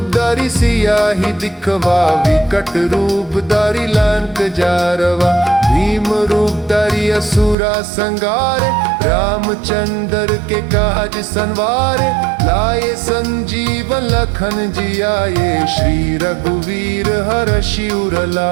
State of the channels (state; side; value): drops out; left; at 7.6 s